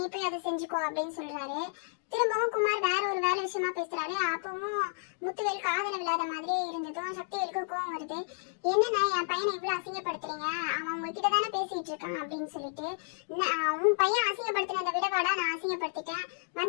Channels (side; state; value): right; silent; digital silence